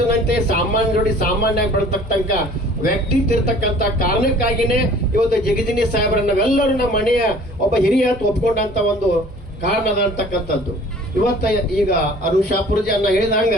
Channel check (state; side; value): normal; both; correlation 0.50